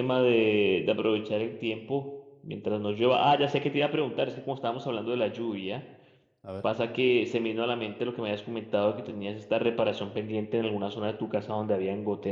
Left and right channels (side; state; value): both; identical; correlation 1.00